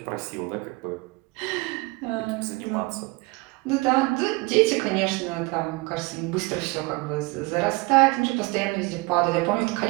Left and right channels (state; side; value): quieter; left; 25.2 dB